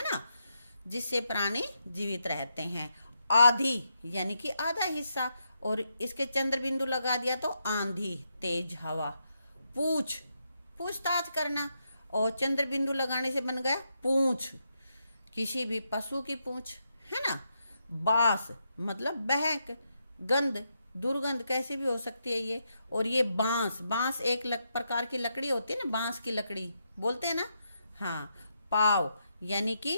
ना, जिससे प्राणी जीवित रहते हैं। आधी यानी कि आधा हिस्सा, और इसके चंद्र बिंदु लगा दिया तो आंधी, तेज हवा। पूछताछ करना, और चंद्र बिंदु लगाने से बन गया पूंछ, किसी भी पशु की पूंछ, है ना। बास मतलब बहक, गंध, दुर्गंध कैसे भी हो सकती है ये। और ये बांस एक प्रकार की लकड़ी होती है ना, बांस की लकड़ी बोलते हैं ना। हाँ, पाव यानी कि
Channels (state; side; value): inverted; both; correlation -0.82